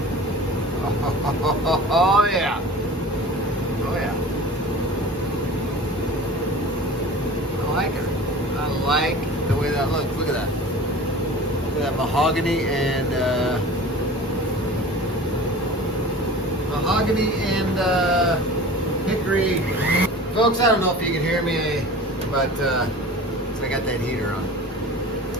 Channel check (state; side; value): normal; both; correlation 0.39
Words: Oh yeah. Oh yeah. I like her. I like the way that looks. Look at that. Look at that mahogany and hickory. Folks, I don't know if you can hear me, but I got that heater on.